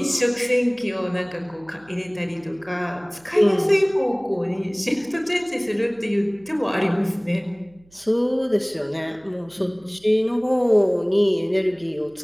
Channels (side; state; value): right; noise; hum, 29 dB below the sound